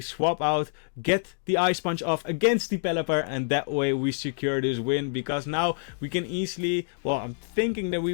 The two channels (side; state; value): right; silent; digital silence